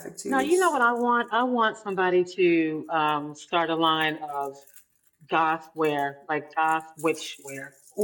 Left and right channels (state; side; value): identical; both; correlation 1.00